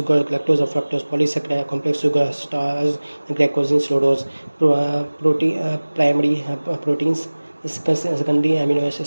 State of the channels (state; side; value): inverted; both; correlation -1.00